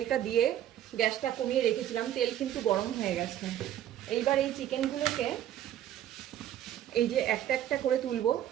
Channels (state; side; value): quieter; left; 11.4 dB